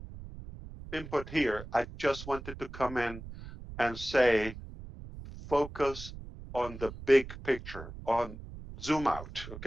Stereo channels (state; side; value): noise; right; rumble, 13 dB below the sound